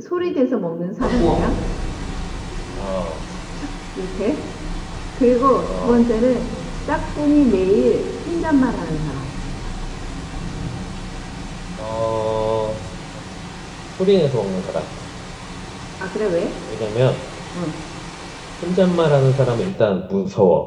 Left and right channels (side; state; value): both; identical; correlation 1.00